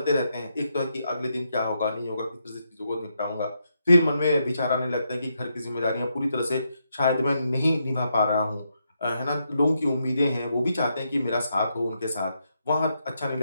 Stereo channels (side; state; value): both; inverted; correlation -0.81